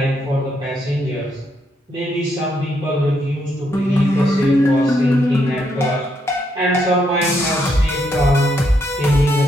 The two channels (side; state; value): both; normal; correlation 0.76